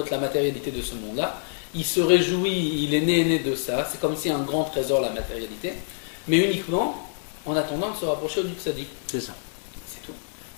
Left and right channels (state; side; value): silent; right; 59 dB below the other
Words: la matérialité de ce monde-là. Il se réjouit, il est né de ça. C'est comme si un grand trésor, la matérialité. Mais uniquement en attendant de se rapprocher du tzaddik. C'est ça. C'est tout.